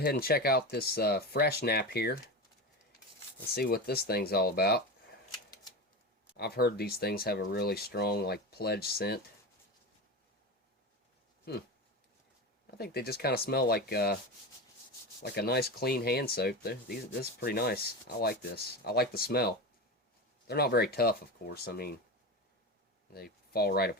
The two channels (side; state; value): both; normal; correlation 0.23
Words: and check out this fresh nap here. Let's see what this thing's all about. I've heard these things have a really strong, like, pledge scent. I think they just kind of smell like a nice clean hand soap. This is pretty nice. I like this. I like the smell. They're not very tough, of course. I mean, they fall right